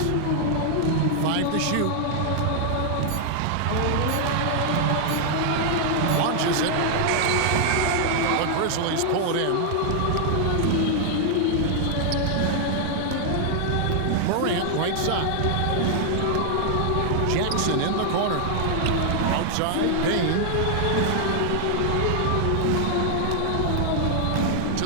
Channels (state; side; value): different; both; correlation 0.00